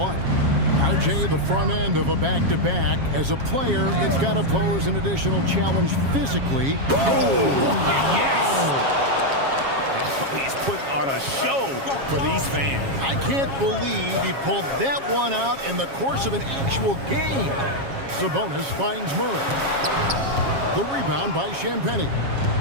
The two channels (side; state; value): left; late; 7.3 ms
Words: RJ, the front end of a back-to-back. As a player, it's got to pose an additional challenge physically. Oh, yes! He's putting on a show for these fans. I can't believe he pulled that one out in the course of an actual game. Sabonis finds Murray. The rebound by Champagnie.